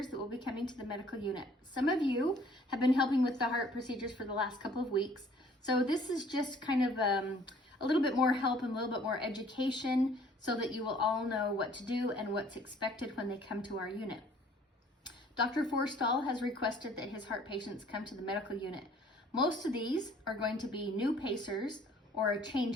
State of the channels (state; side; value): normal; both; correlation 0.56